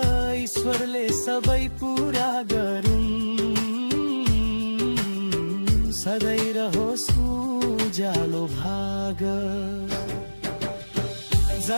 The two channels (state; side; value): inverted; both; correlation -1.00